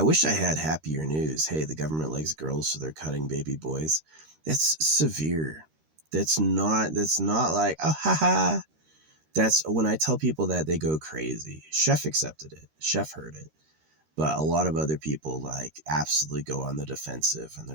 wish I had happier news. Hey, the government likes girls, so they're cutting baby boys. That's severe. That's not like, oh haha. That's when I tell people that, they go crazy. Chef accepted it. Chef heard it. But a lot of other people like absolutely go on the defensive, and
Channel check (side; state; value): left; late; 13 ms